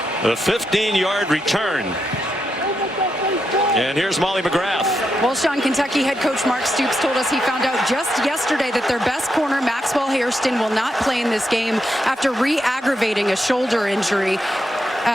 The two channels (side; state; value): both; normal; correlation 0.83